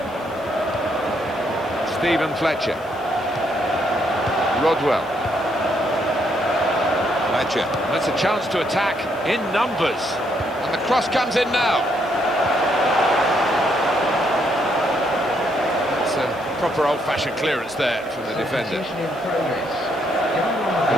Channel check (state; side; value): noise; right; hiss, 28 dB below the sound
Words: Stephen Fletcher. Rodwell. Fletcher. That's a chance to attack in numbers. And the cross comes in now. It's a proper old-fashioned clearance there from the defender.